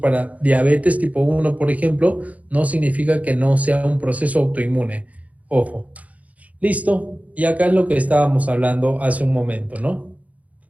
diabetes tipo 1, por ejemplo, no significa que no sea un proceso autoinmune. Ojo. Listo. Y acá es lo que estábamos hablando hace un momento, ¿no?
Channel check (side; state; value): left; late; 0.070 ms